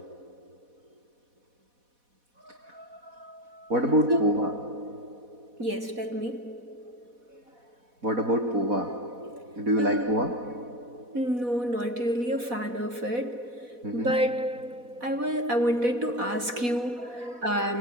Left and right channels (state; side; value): late; left; 4.1 ms